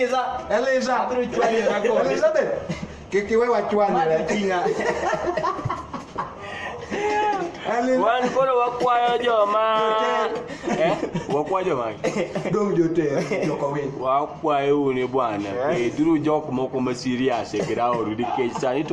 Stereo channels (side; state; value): both; identical; correlation 1.00